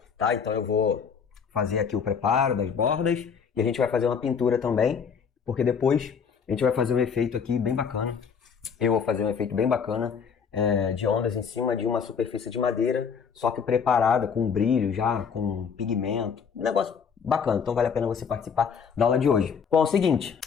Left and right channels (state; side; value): quieter; right; 6.5 dB